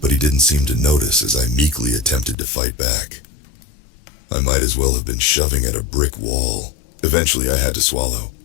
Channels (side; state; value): right; drops out; at 2.4 s